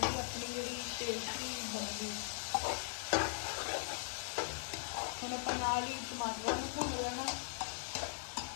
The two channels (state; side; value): silent; right; digital silence